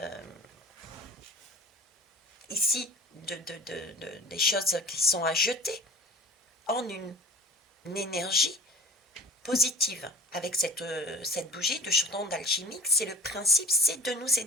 ici, des choses qui sont à jeter en une énergie positive. Avec cette bougie de chaudron d'alchimique, c'est le principe, c'est de nous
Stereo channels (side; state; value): both; normal; correlation 0.38